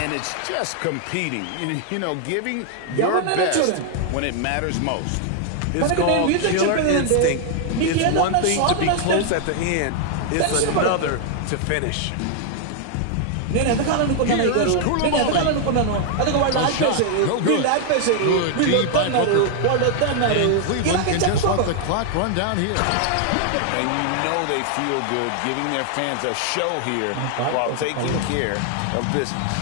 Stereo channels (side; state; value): both; different; correlation 0.00